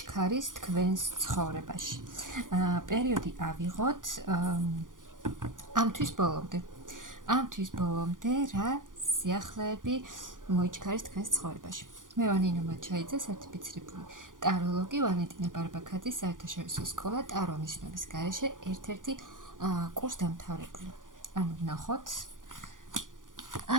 თქვენს ცხოვრებაში. პერიოდი ავიღოთ ამთვის ბოლომდე რა სიახლეები მოიჩქარის თქვენს ცხოვრებაში. მე ვარ ნინო მაჩაიძე, სერტიფიცირებული ტაროლოგი, ვალენტინა ბარბაქაძის საერთაშორისო სკოლა ტარო ნიშნების გარეშე ერთ-ერთი კურსდამთავრებული. ნახოთ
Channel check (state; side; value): late; left; 0.89 ms